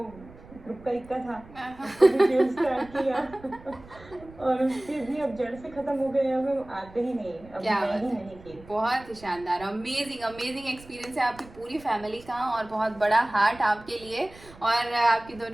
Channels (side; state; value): right; noise; rumble, 21 dB below the sound